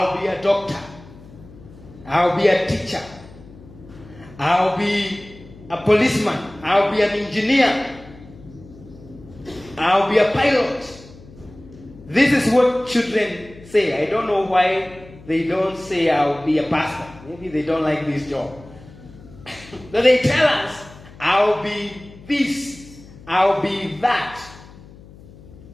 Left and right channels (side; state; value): left; noise; hum, 20 dB below the sound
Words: be a doctor. I'll be a teacher. I'll be a policeman. I'll be an engineer. I'll be a pilot. This is what children say. I don't know why they don't say I'll be a pastor. Maybe they don't like this job. So they tell us, I'll be this. I'll be that.